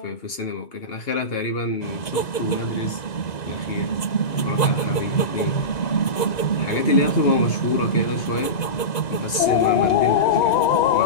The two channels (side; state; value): right; late; 1.9 ms